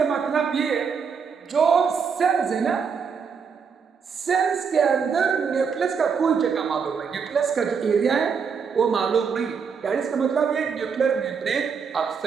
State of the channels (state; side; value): quieter; left; 6.1 dB